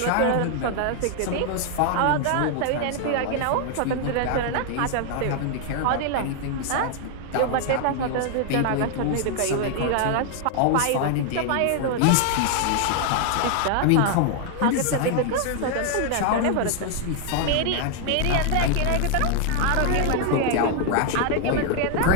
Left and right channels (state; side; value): different; both; correlation 0.00